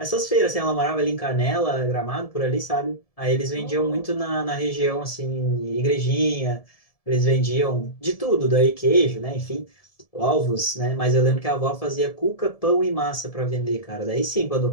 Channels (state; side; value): late; right; 1.7 ms